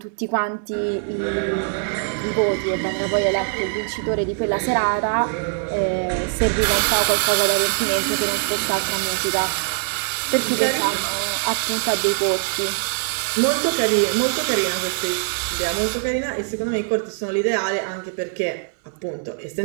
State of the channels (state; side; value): silent; left; digital silence